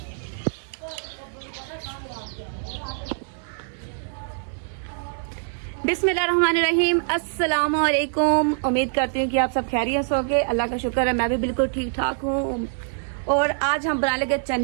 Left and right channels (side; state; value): left; silent; 62 dB below the other